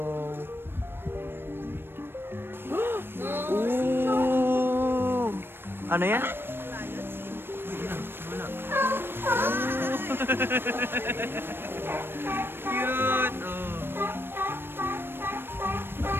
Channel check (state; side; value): late; left; 0.10 ms